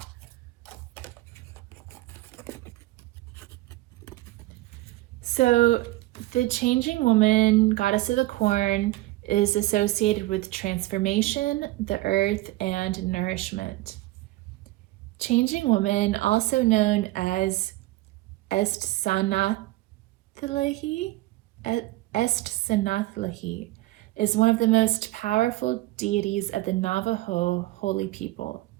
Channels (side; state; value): left; quieter; 18.3 dB